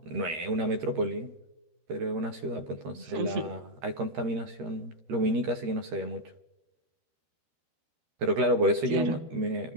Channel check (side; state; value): left; late; 13 ms